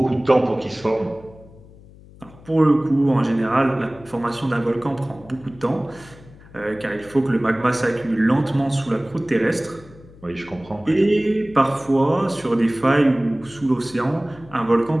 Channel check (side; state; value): left; noise; hum, 22 dB below the sound